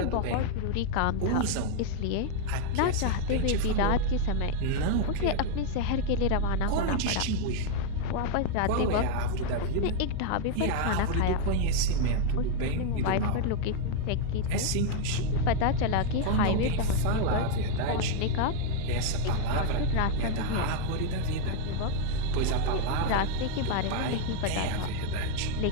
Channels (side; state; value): both; different; correlation 0.00